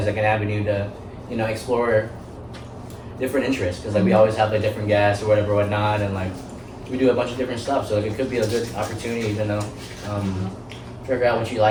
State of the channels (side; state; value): both; identical; correlation 1.00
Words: like an avenue to, you know, explore different interests, because like we always have like different guests or whatever whatnot, and like we do a bunch of different stuff, so like it could be a good opportunity to know, figure out what you